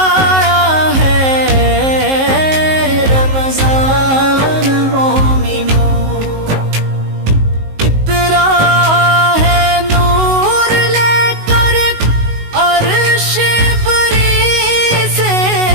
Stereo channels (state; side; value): late; left; 19 ms